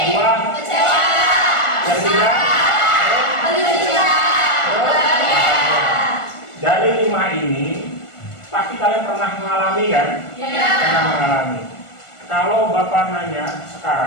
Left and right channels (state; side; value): late; right; 1.4 ms